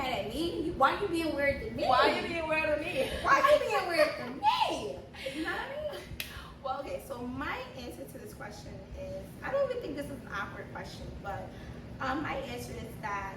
at me? Why you being weird to me? Why are you being weird to me? Why you being weird to me? You know what I mean? Well, okay, so my answer to this question is, I don't even think this is an awkward question, but my answer is that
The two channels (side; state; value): both; identical; correlation 1.00